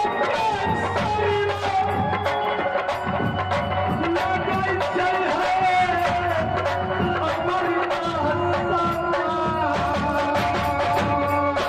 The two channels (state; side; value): identical; both; correlation 1.00